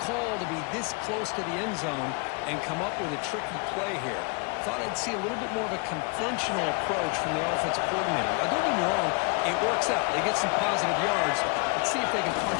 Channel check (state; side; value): quieter; right; 32.4 dB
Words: call to be this close to the end zone and come up with a tricky play here. Thought I'd see a little bit more of a conventional approach from the offensive coordinator. Now, don't get me wrong, it works out. They get some positive yards. Let's see if they can